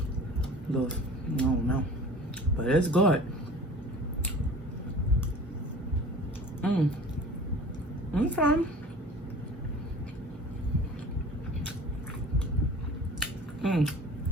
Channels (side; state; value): both; normal; correlation 0.42